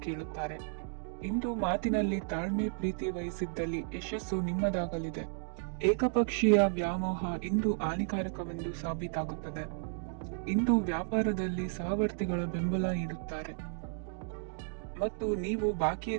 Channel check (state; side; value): silent; left; digital silence